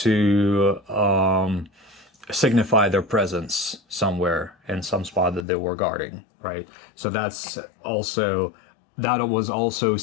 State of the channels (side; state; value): right; drops out; at 5.5 s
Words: signify their presence somewhere in some spot that they were guarding, right? So that was also